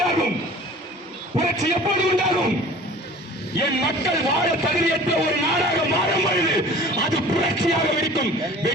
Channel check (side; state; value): both; normal; correlation 0.45